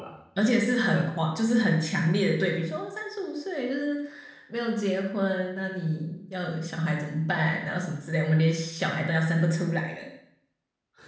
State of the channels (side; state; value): both; identical; correlation 1.00